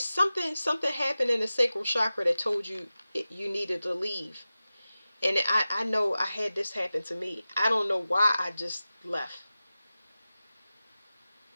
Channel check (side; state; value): both; inverted; correlation -0.95